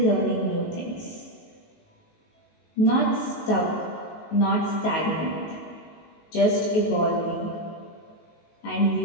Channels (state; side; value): late; right; 19 ms